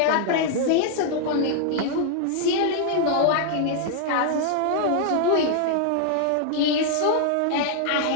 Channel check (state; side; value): different; both; correlation 0.00